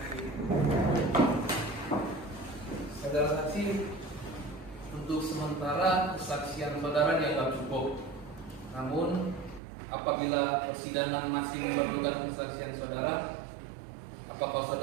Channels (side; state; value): left; drops out; at 9.6 s